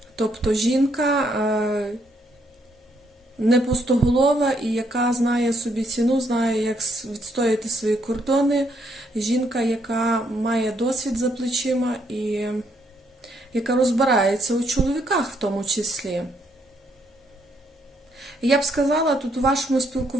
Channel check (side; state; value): both; normal; correlation 0.72